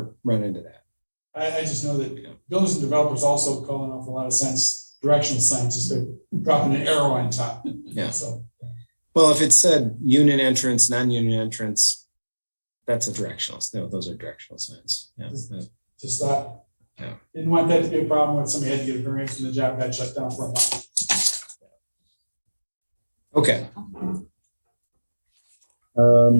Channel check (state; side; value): inverted; both; correlation -1.00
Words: run into that. I just know that builders and developers also call an awful lot of signs, directional signs, just to dropping an arrow on top. Yeah. So, Well, if it said union entrance, non-union entrance, that's a directional. No, those are directional signs. Yeah. just thought, Yeah. didn't want that to be a problem when somebody had to get a variance and the job got shut down for a month. Okay.